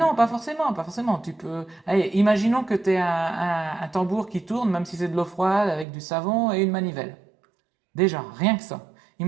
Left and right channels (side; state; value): left; drops out; at 5.9 s